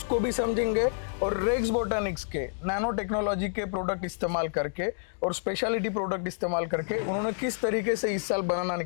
भी समझेंगे, और रेक्स बोटनिक्स के नैनो टेक्नोलॉजी के प्रोडक्ट इस्तेमाल करके और स्पेशलिटी प्रोडक्ट इस्तेमाल करके उन्होंने किस तरीके से इस साल बनाना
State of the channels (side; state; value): right; silent; digital silence